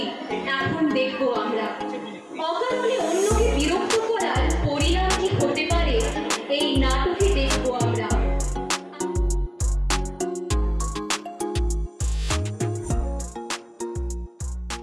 এখন দেখবো আমরা। অকারণে অন্যকে বিরক্ত করার পরিণাম কি হতে পারে এই নাটকে দেখবো আমরা।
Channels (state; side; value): identical; both; correlation 1.00